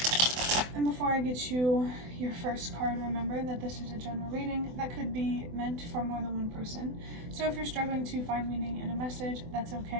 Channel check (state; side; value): late; left; 24 ms